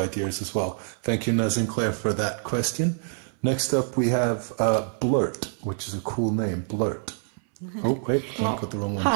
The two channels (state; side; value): silent; left; 59 dB below the other